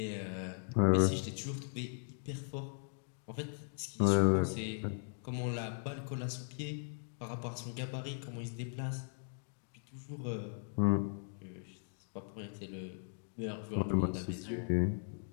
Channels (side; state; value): right; silent; digital silence